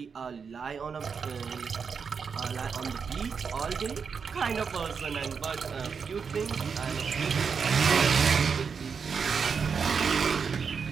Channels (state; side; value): quieter; left; 6.0 dB